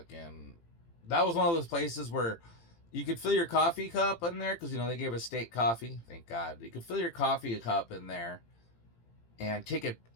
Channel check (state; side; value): late; right; 18 ms